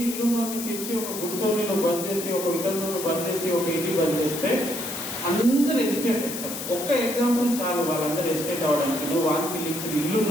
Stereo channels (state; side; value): noise; left; hiss, 7 dB below the sound